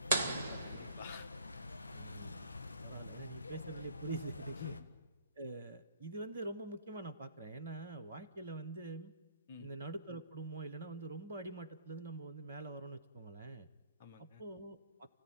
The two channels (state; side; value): inverted; both; correlation -0.60